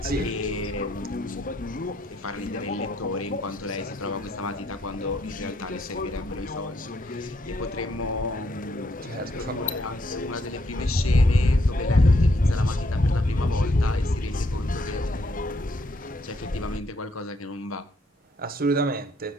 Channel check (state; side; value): normal; both; correlation 0.72